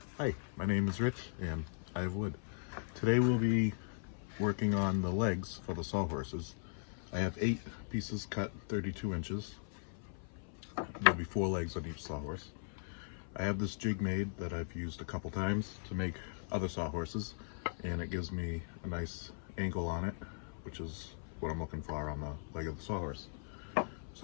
Hi, my name is Rich and I have wood. Today we'll be working on the legs for the sawhorses. I have 8 pieces cut 32 inches. There'll be 4 legs on each sawhorse. I have this jig made that I've used a couple times to make other sawhorses, and it gives me a nice angle on it, which is what I'm looking for on the leg of the sawhorse.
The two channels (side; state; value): right; silent; 52 dB below the other